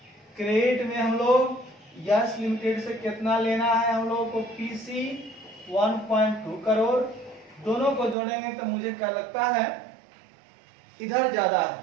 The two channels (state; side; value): drops out; left; at 8.2 s